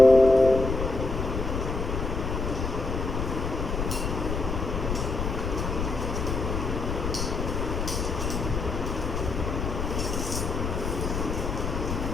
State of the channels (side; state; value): left; noise; rumble, 2 dB below the sound